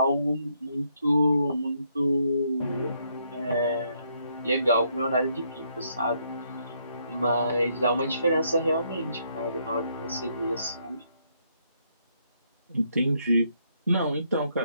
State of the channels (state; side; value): inverted; both; correlation -0.74